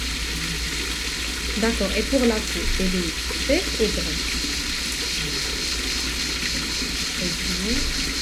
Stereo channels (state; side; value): identical; both; correlation 1.00